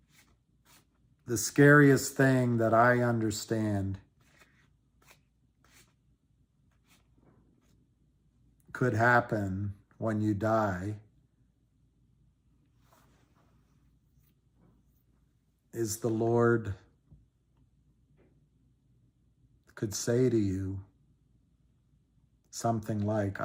the scariest thing that I understand could happen when you die is the Lord could say to you something like,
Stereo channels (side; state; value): both; identical; correlation 1.00